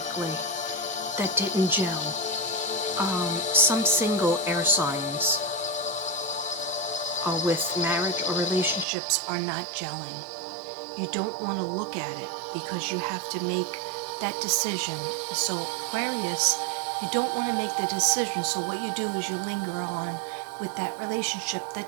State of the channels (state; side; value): drops out; left; at 8.8 s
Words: that didn't gel. Some single air signs with marriage or relationships are not gelling. You don't want to look at it because you have to make that decision. So Aquarius, you don't want to make the decision. So what you do is you linger on with that relationship